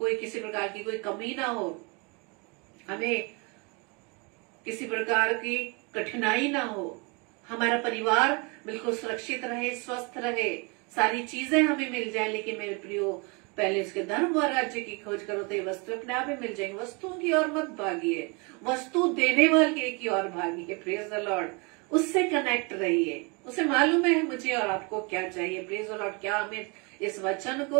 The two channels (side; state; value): left; quieter; 30.9 dB